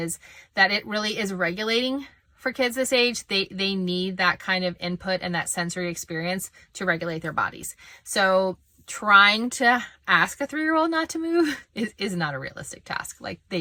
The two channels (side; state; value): both; identical; correlation 1.00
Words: that it really is regulating. For kids this age, they need that kind of input and that sensory experience to regulate their bodies. So trying to ask a 3-year-old not to move is not a realistic task. Like,